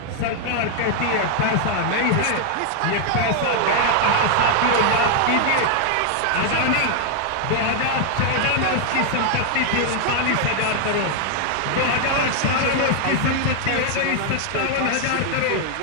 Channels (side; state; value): both; different; correlation 0.00